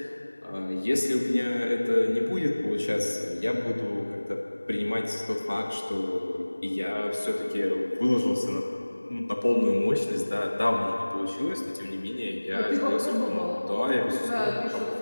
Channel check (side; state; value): both; inverted; correlation -1.00